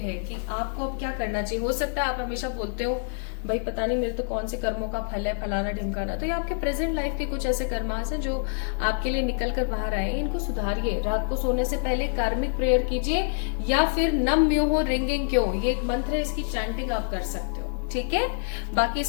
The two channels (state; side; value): silent; right; digital silence